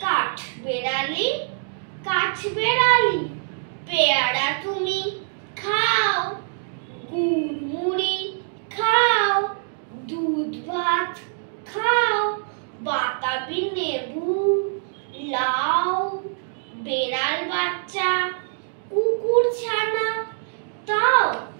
কাঠবেড়ালি, কাঠবেড়ালি, পেয়ারা তুমি খাও, গুড় মুড়ি খাও, দুধ ভাত খাও, বাতাবি লেবু, লাউ, বেড়াল বাচ্চা, কুকুর ছানা তাও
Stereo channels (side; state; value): left; silent; digital silence